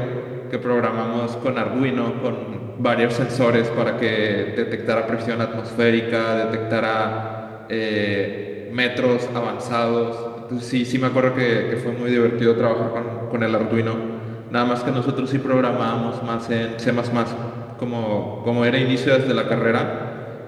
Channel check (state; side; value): identical; both; correlation 1.00